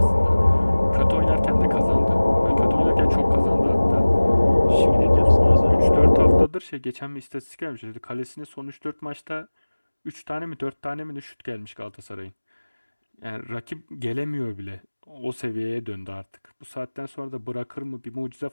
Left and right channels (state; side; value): inverted; both; correlation -1.00